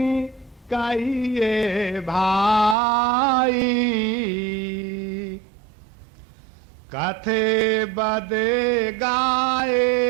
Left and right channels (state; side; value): drops out; left; at 2.8 s